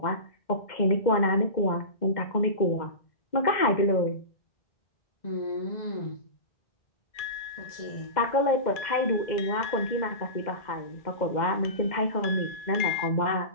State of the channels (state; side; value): late; right; 2.1 ms